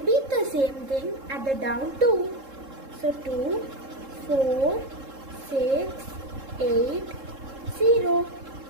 the same thing at the down 2. So 2, 4, 6, 8, 0.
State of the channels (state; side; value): late; left; 3.7 ms